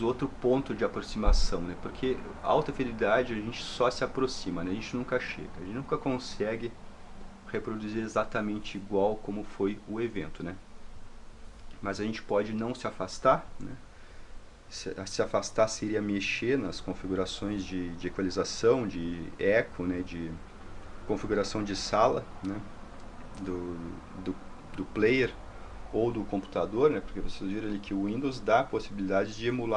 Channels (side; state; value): both; identical; correlation 1.00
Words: outro ponto de aproximação, né? Porque a alta fidelidade a gente só se aproxima, né? A gente nunca chega, a gente nunca consegue reproduzir exatamente igual como foi o evento, né? Mas a gente pode não se afastar, né? Se afastar seria mexer nas configurações de equalização, de eco, né? De configuração de sala, né? do player ou do computador, né? Porque vocês viram ali que o Windows dá a possibilidade de